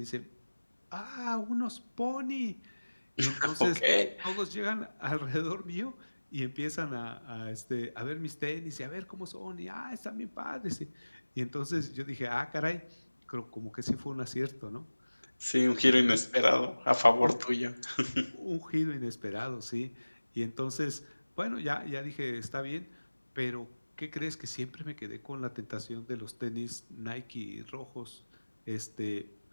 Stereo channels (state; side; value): inverted; both; correlation -1.00